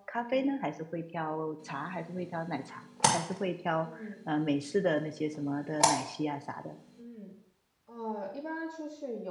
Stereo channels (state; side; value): identical; both; correlation 1.00